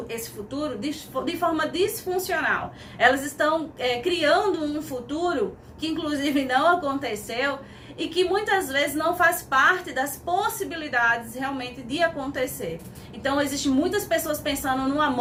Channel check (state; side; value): identical; both; correlation 1.00